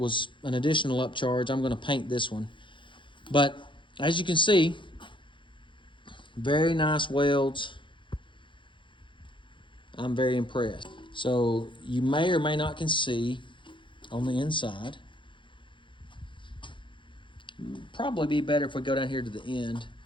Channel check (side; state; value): right; late; 0.24 ms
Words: an additional upcharge. I'm going to paint this one. But as you can see, very nice welds. I'm very impressed. So you may or may not can see on the inside. Probably be better if we go down here to the end